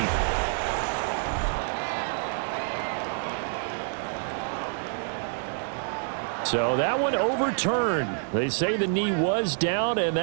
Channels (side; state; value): left; silent; 60 dB below the other